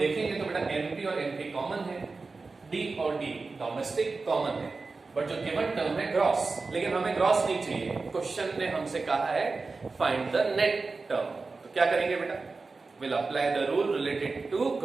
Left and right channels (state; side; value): quieter; left; 4.0 dB